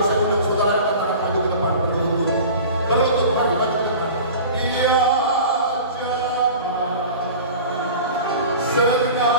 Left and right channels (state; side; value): inverted; both; correlation -0.38